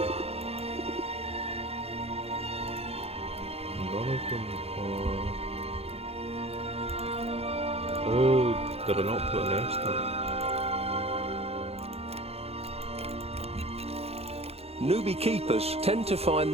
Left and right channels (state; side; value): late; left; 0.29 ms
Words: None of them are... Oh, did I not put a nest up? Newbie keepers tend to find